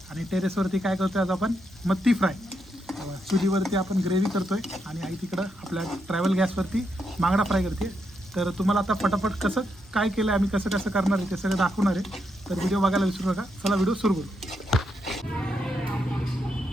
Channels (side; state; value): both; normal; correlation 0.81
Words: आणि टेरेसवरती काय करतोय आज आपण मत्ती फ्राय. चुलीवरती आपण ग्रेव्ही करतोय आणि आई तिकडं आपल्या ट्रॅव्हल गॅसवरती बांगडा फ्राय करते. तर तुम्हाला आता फटाफट कसं काय केलं आम्ही कसं कसं करणार आहे ते सगळं दाखवणार आहे. तर व्हिडिओ बघायला विसरू नका. चला व्हिडिओ सुरू करू.